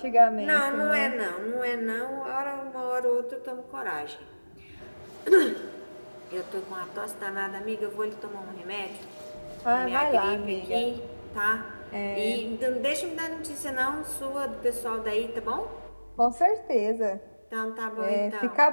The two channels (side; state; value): both; inverted; correlation -1.00